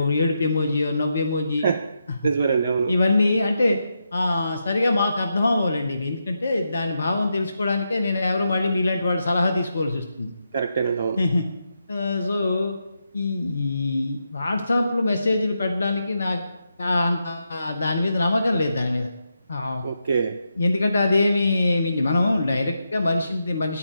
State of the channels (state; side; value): inverted; both; correlation -0.85